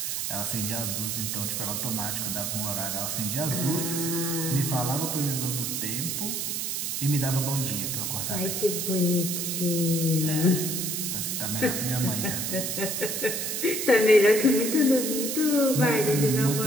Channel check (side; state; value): right; noise; hiss, 2 dB below the sound